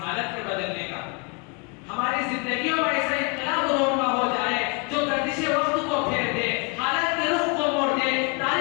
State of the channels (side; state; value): right; quieter; 32.0 dB